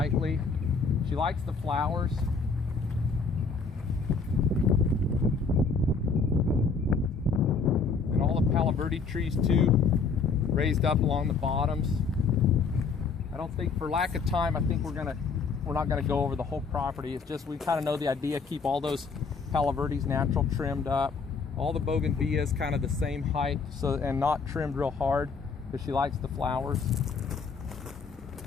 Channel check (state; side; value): quieter; right; 4.9 dB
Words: She likes the flowers. And all the Palo Verde trees too, raised up along the bottoms. I don't think, for lack of time, I think we're not gonna go over the whole property. It's just we kind of know the idea. Keep all those Palo Verdes natural trimmed up. All the bougainvilleas kind of the same height, so, and not trimmed real hard because she likes the flowers.